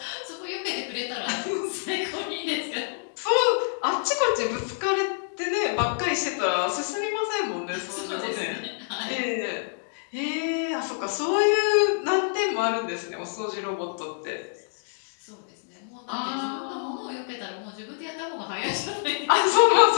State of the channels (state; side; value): silent; right; digital silence